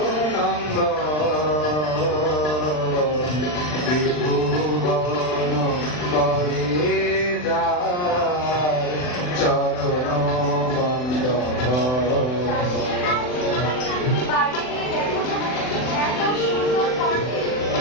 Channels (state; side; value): late; right; 39 ms